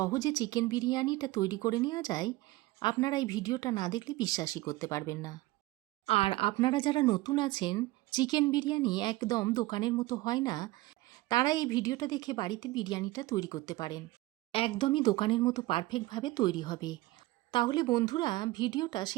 চিকেন বিরিয়ানিটা তৈরি করে নেওয়া যায়, আপনারা এই ভিডিওটা না দেখলে বিশ্বাসই করতে পারবেন না। আর আপনারা যারা নতুন আছেন, চিকেন বিরিয়ানি একদম দোকানের মতো হয় না, তারা এই ভিডিওটা দেখে বাড়িতে বিরিয়ানিটা তৈরি করতে পারেন। একদমই দোকানের মতো পারফেক্টভাবে তৈরি হবে। তাহলে বন্ধুরা, ভিডিওটা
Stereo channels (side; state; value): left; quieter; 19.0 dB